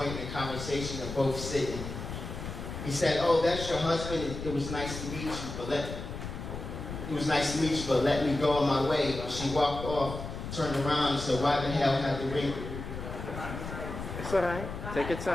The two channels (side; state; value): left; noise; rumble, 8 dB below the sound